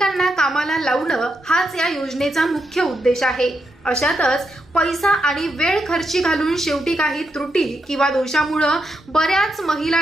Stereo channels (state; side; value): normal; both; correlation 0.83